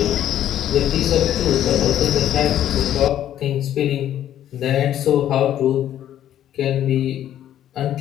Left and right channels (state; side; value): quieter; right; 11.4 dB